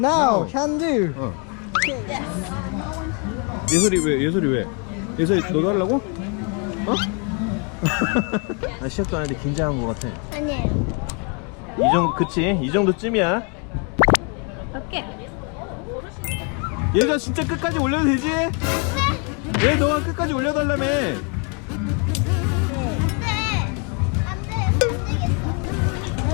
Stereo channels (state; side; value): quieter; right; 36.4 dB